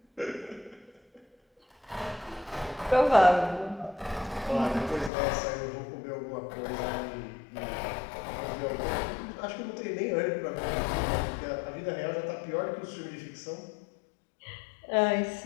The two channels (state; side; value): drops out; right; at 5.1 s